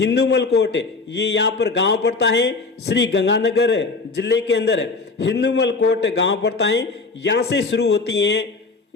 कोट, ये यहाँ पर गांव पड़ता है, श्री गंगानगर जिले के अंदर हिंदूमल कोट गांव पड़ता है। यहाँ से शुरू होती है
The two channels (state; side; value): quieter; right; 4.0 dB